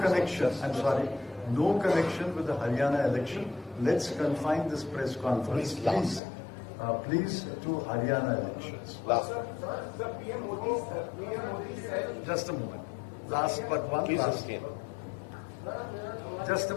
I'm sorry, no connection with the Haryana election. Let's confine this press conference, please, to Haryana elections. The PM Modi said... Just a moment. Last but one Please last. sustain. Just a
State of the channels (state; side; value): drops out; right; at 6.2 s